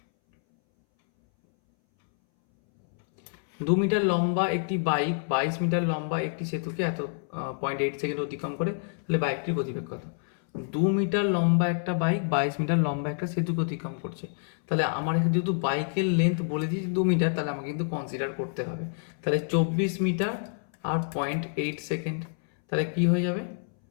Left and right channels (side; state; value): right; silent; 60 dB below the other